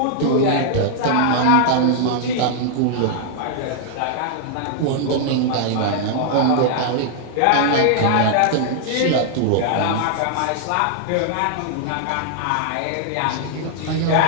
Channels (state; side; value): different; both; correlation -0.01